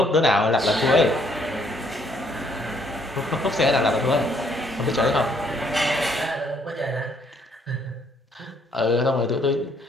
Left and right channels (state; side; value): normal; both; correlation 0.67